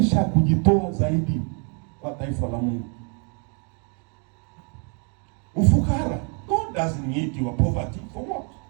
kujitoa zaidi kwa taifa la Mungu. Ufukara, God doesn't need your poverty for what?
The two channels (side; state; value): left; quieter; 38.9 dB